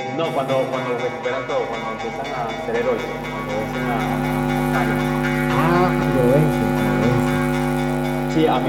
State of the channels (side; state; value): both; identical; correlation 1.00